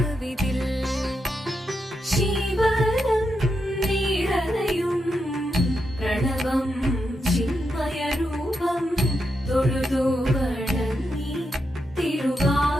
ശിവദം നിറയും പ്രണവം ചിന്മയരൂപം തൊഴുതു വണങ്ങി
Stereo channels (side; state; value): both; normal; correlation 0.85